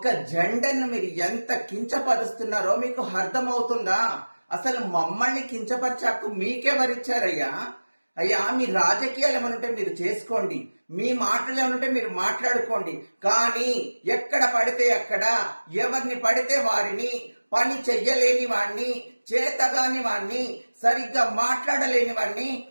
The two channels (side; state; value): both; inverted; correlation -1.00